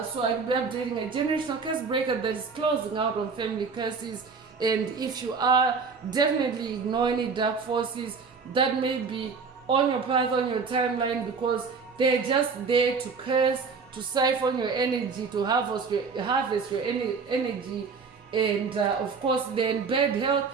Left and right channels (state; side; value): quieter; left; 5.1 dB